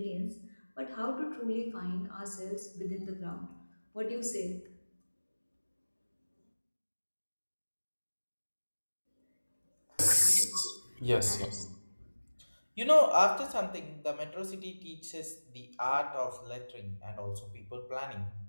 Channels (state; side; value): inverted; both; correlation -1.00